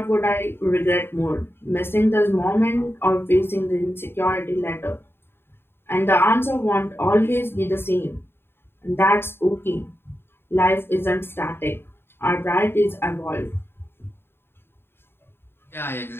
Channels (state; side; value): late; right; 0.11 ms